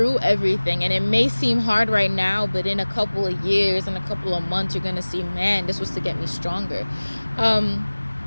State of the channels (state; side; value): inverted; both; correlation -1.00